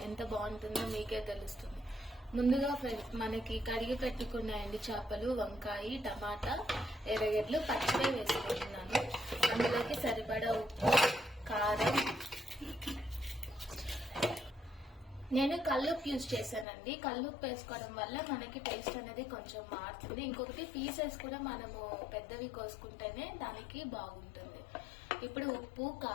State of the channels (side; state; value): right; drops out; at 16.7 s